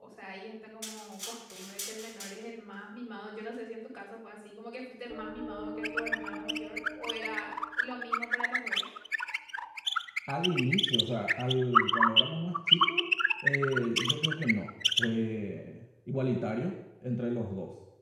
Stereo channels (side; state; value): both; identical; correlation 1.00